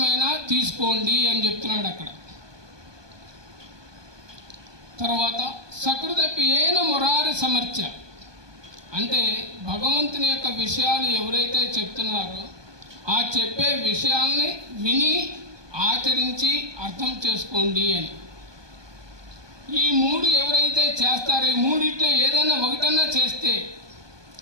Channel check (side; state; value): left; late; 1.2 ms